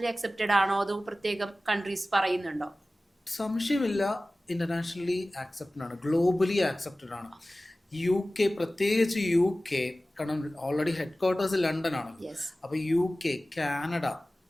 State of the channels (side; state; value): both; normal; correlation 0.97